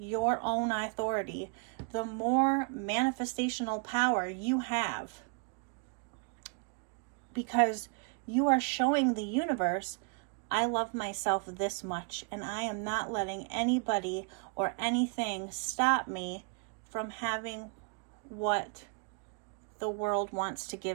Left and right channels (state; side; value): quieter; left; 36.6 dB